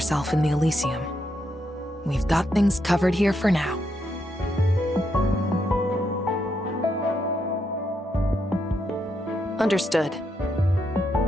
in the Elysium. We've got things covered here for now. Understood.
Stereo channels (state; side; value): normal; both; correlation 0.80